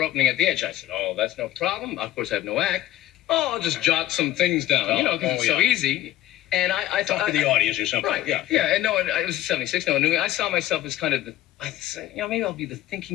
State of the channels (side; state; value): right; quieter; 14.0 dB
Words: opening at the Edge. I said, oh, that's no problem. Of course, I have no act. Oh, I'll just jot some things down, because it's so easy. And I thought... Talk to the audience or something. Right, yeah. And no one, it was 76, no one knew me. I saw myself as kind of I said, maybe I'll be the